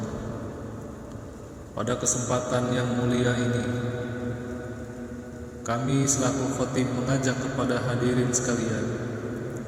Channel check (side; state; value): both; identical; correlation 1.00